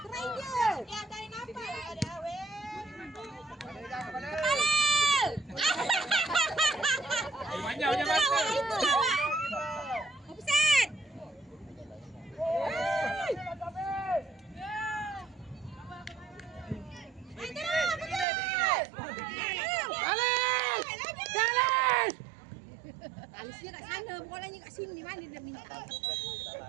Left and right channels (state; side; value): drops out; left; at 18.2 s